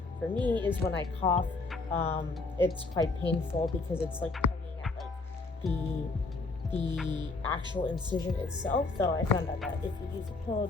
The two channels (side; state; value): right; quieter; 3.6 dB